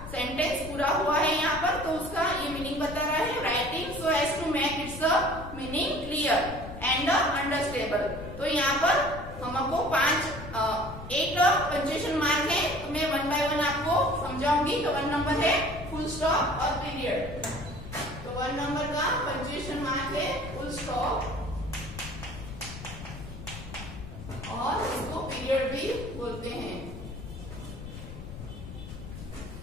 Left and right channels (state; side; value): noise; left; rumble, 11 dB below the sound